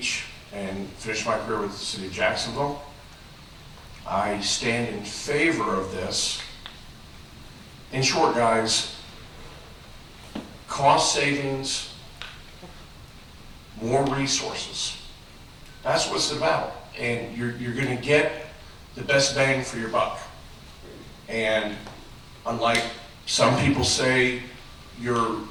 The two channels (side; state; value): both; identical; correlation 1.00